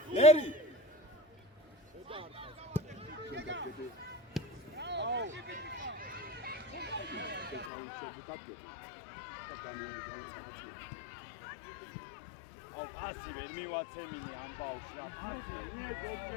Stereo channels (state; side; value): drops out; right; at 7.7 s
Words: ერი ასი ვერ მივაცემინე ამ ბავშვს რა